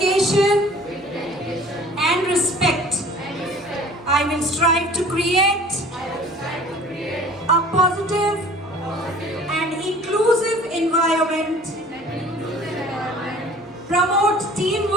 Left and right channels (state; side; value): normal; both; correlation 0.49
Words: and respect. I will strive to create a positive and inclusive environment, promote